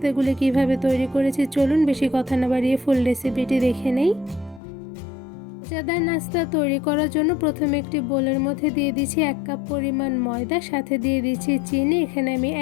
কিভাবে তৈরি করেছি চলুন বেশি কথা না বাড়িয়ে ফুল রেসিপিটি দেখে নেই। মজাদার নাস্তা তৈরি করার জন্য প্রথমে একটি বোলের মধ্যে দিয়ে দিচ্ছি 1 কাপ পরিমাণ ময়দা, সাথে দিয়ে দিচ্ছি চিনি। এখানে আমি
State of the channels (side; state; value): right; drops out; at 4.6 s